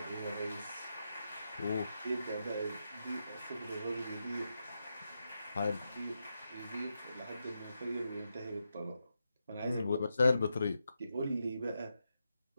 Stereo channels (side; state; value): both; inverted; correlation -0.86